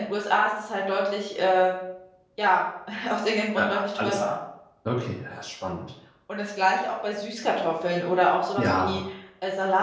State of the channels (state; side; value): identical; both; correlation 1.00